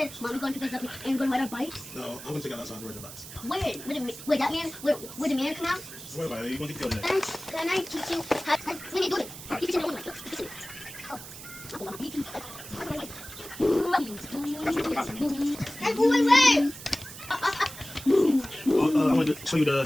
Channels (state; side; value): noise; right; hiss, 13 dB below the sound